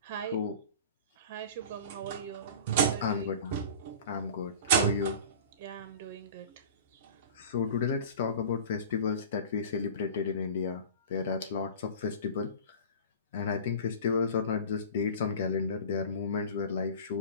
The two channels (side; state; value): both; inverted; correlation -0.37